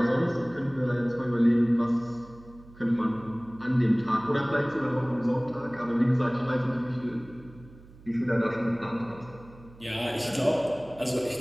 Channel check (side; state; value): right; noise; hum, 22 dB below the sound